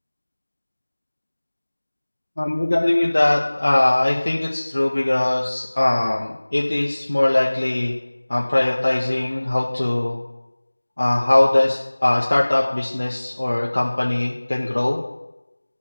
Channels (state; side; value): inverted; both; correlation -1.00